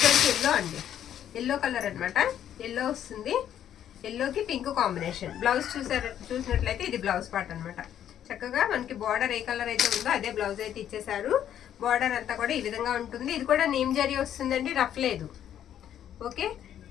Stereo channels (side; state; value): right; quieter; 10.3 dB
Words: ఎల్లో అండి, ఎల్లో కలర్ అన్నమాట. ఎల్లో వస్తుంది, ఎల్లోకి పింక్ కాంబినేషన్. బ్లౌజ్ చూసినట్లయితే ఇది బ్లౌజ్ పార్ట్ అన్నమాట. చక్కగా మనకి బార్డర్ ఏ కలర్ అయితే ఉందో అదే బ్లౌజ్ అయితే ఇచ్చేసారు. బార్డర్ అంతా కూడా ఈ విధంగా ఉంటుంది. ఇది కూడా నేమ్ జరీ వస్తుందండి, రఫ్ లేదు. ఓకే,